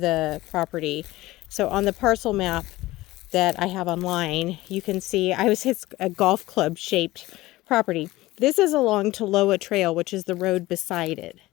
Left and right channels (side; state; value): right; quieter; 18.2 dB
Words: property. So on the parcel map that I have online, you can see it's a golf club shaped property. This is along Toloa Trail, which is the road beside it.